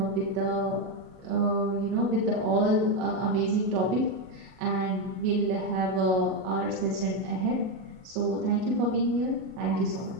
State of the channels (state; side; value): late; left; 38 ms